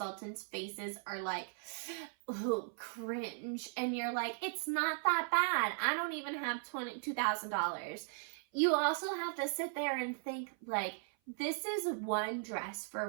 faces are like, ooh, cringe. And you're like, it's not that bad. I don't even have $2,000. You also have to sit there and think like, this is one dress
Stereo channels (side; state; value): left; silent; 53 dB below the other